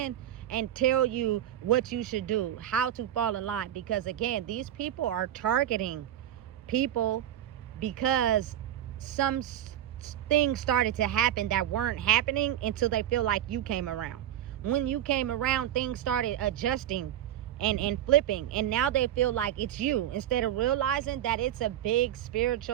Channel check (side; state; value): left; quieter; 11.5 dB